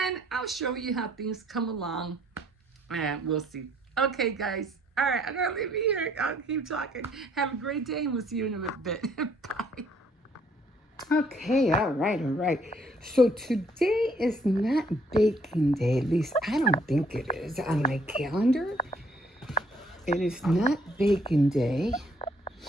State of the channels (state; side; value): normal; both; correlation 0.65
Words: I'll show you how things come along. And we'll see. Okay, guys. All right, I'm going to leave you here. I'll keep talking. Have a great day, and we'll see you in a bit. Bye. Okay, all right. So today is not baking day. At least I don't think it is on my calendar. It is not baking day.